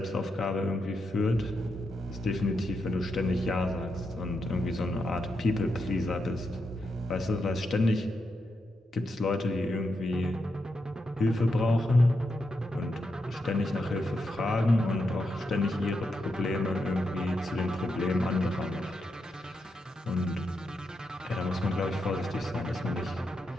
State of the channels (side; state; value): both; normal; correlation 0.84